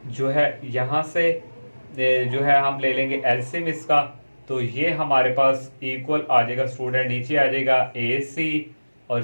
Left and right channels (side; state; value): both; inverted; correlation -1.00